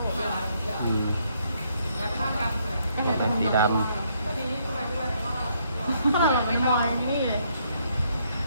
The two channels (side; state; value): both; inverted; correlation -0.72